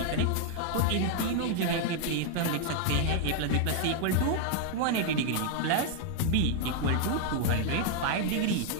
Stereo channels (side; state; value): both; different; correlation 0.00